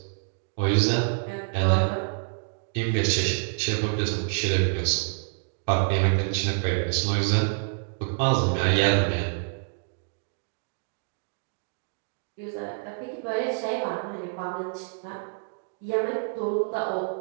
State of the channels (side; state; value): left; silent; digital silence